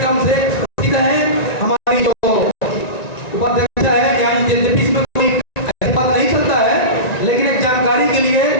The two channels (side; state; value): right; late; 1.9 ms